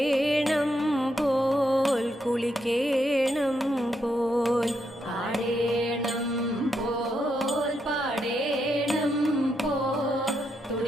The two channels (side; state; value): both; normal; correlation 0.80